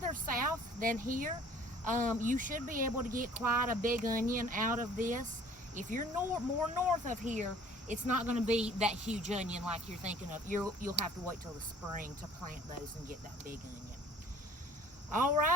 south than here, you should be able to get quite a big onion out of this. If you're more north of here, it's not going to be that huge onion like you're thinking of. You'll have to wait till the spring to plant those and get that big onion. All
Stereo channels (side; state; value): both; normal; correlation 0.53